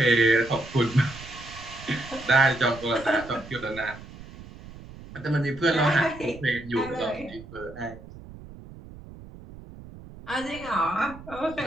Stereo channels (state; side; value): noise; right; rumble, 16 dB below the sound